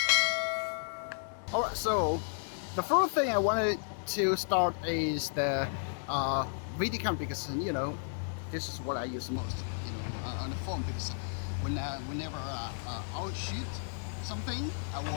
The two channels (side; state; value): right; silent; digital silence